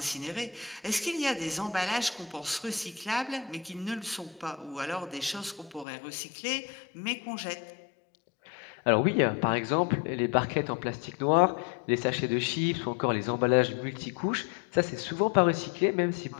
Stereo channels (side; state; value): right; drops out; at 5.9 s